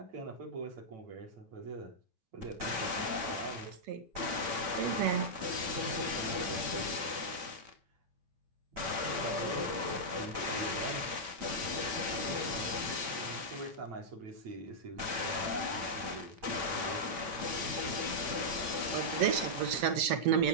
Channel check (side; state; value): left; late; 9.0 ms